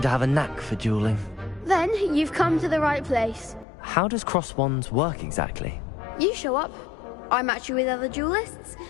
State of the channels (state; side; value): drops out; right; at 3.7 s